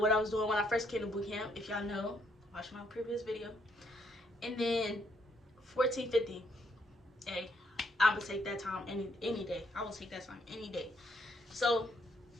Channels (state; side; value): normal; both; correlation 0.72